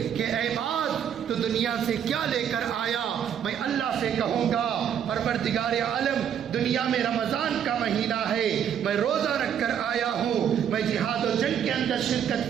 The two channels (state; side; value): quieter; left; 8.8 dB